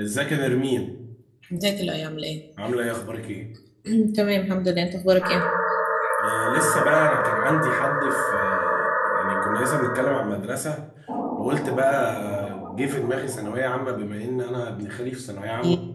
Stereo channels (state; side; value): identical; both; correlation 1.00